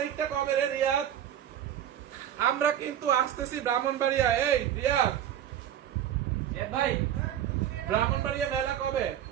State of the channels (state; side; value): quieter; left; 10.5 dB